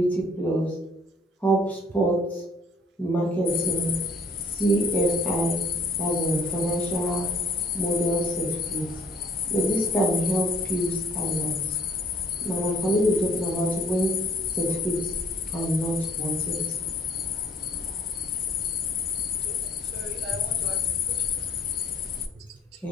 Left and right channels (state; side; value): normal; both; correlation 0.59